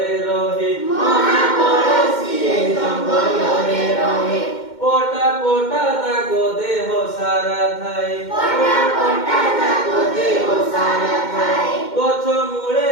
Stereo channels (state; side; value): late; right; 2.1 ms